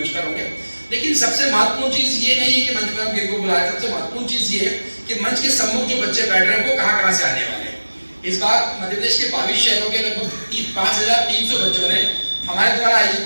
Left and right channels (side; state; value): both; inverted; correlation -1.00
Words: पर होंगे। लेकिन सबसे महत्वपूर्ण चीज ये नहीं है कि मंच पर हम किनको बुलाए, सबसे महत्वपूर्ण चीज ये है कि मंच के सम्मुख जो बच्चे बैठ रहे हैं वो कहाँ से आने वाले हैं। इस बार मध्य प्रदेश के 22 शहरों के लगभग 5300 बच्चों ने हमारे द्वारा